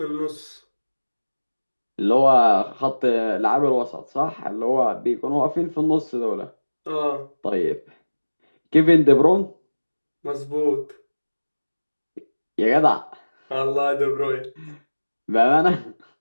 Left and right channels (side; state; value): both; inverted; correlation -1.00